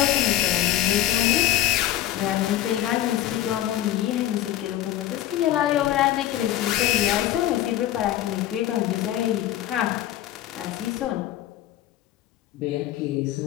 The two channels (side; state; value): right; quieter; 13.2 dB